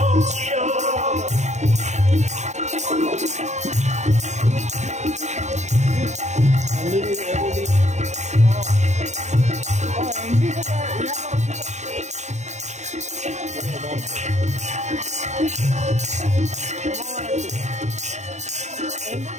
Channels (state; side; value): late; left; 0.34 ms